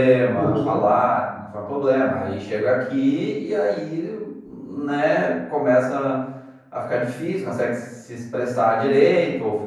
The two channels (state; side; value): identical; both; correlation 1.00